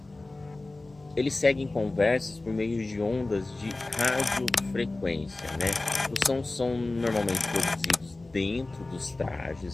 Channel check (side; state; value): right; quieter; 3.0 dB